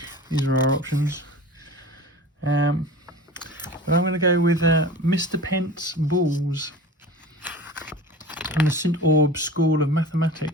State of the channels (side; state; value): both; normal; correlation 0.36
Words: these are our options. But I'm going to go with Mr. Pent's Balls from the St. Aub's School of